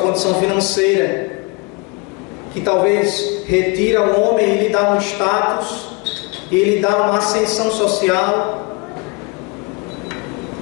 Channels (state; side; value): quieter; right; 29.1 dB